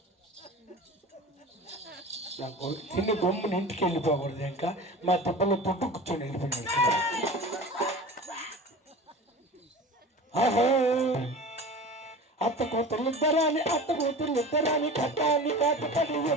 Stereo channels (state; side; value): normal; both; correlation 0.35